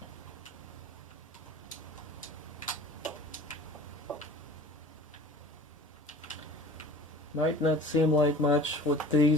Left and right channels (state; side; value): normal; both; correlation 0.43